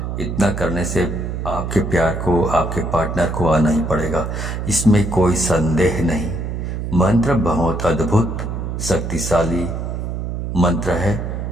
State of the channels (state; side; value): noise; right; hum, 4 dB below the sound